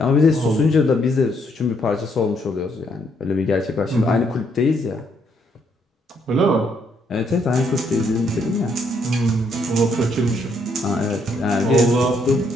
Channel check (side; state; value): both; normal; correlation 0.72